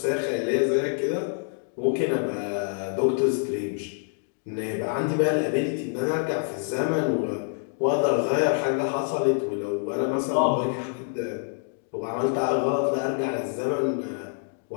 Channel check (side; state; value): right; silent; 61 dB below the other